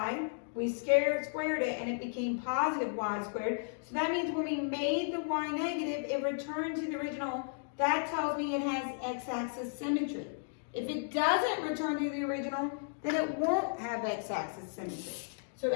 we squared it, and it became positive y squared. So that means when we made the y negative, it returned to the original. That tells me it has x-axis symmetry. If it doesn't return to the original, then it won't have x-axis symmetry. So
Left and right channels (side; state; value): right; silent; digital silence